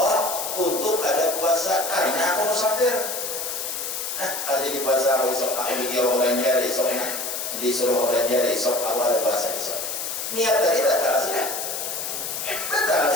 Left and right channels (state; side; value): noise; left; hiss, 4 dB below the sound